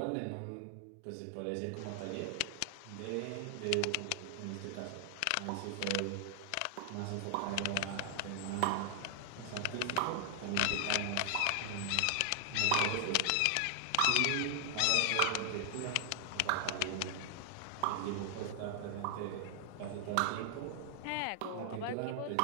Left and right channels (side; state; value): both; different; correlation 0.00